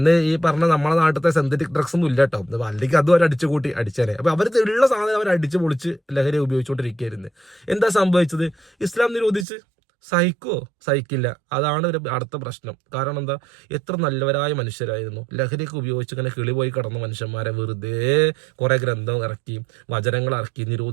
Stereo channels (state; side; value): drops out; left; at 9.5 s